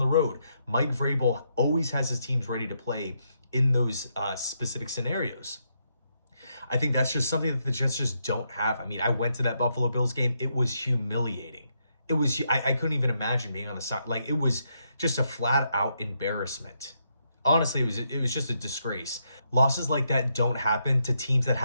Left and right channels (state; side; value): inverted; both; correlation -0.78